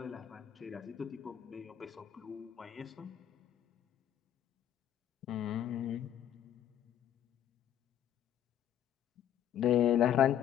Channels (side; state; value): right; quieter; 10.5 dB